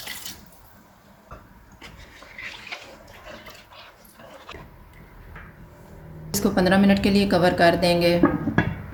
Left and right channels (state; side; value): identical; both; correlation 1.00